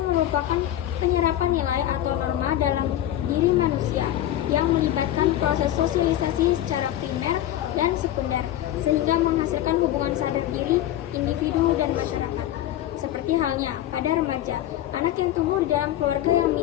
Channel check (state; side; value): quieter; right; 12.7 dB